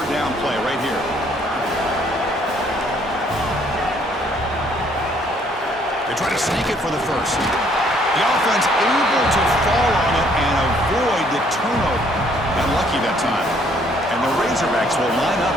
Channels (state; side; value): normal; both; correlation 0.64